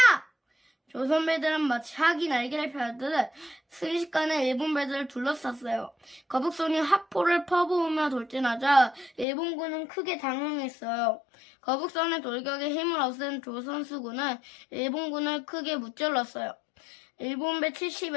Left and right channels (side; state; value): right; drops out; at 9.2 s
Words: 조선 배들은 마치 학이 날개를 펴듯 순식간에 일본 배들을 둘러쌌어요. 거북선이 화포를 퍼부으며 돌진하자 일본군은 크게 당황했어요. 거북선의 돌격에 힘을 얻은 조선 수군은 일본군을 크게 무찔렀어요. 일본 배